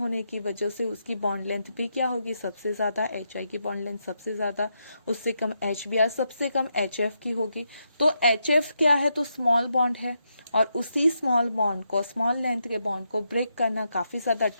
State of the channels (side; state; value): both; inverted; correlation -0.82